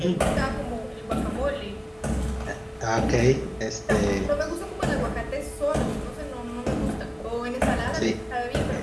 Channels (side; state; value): both; identical; correlation 1.00